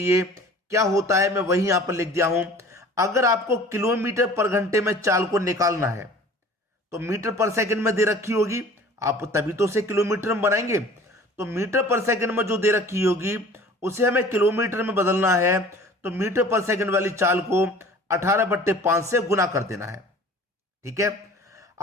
क्या होता है, मैं वही यहां पर लिख दिया हूं। अगर आपको किलोमीटर पर घंटे में चाल को निकालना है तो मीटर पर सेकंड में दे रखी होगी, आप तभी तो उसे किलोमीटर में बनाएंगे। तो मीटर पर सेकंड में जो दे रखी होगी उसे हमें किलोमीटर में बदलना है, तो मीटर पर सेकंड वाली चाल को 18/5 से गुना कर देना है। ठीक है।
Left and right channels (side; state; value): both; normal; correlation 0.46